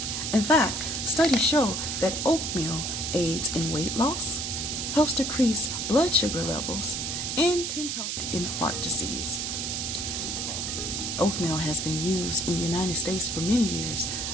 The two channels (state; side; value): noise; right; hiss, 2 dB below the sound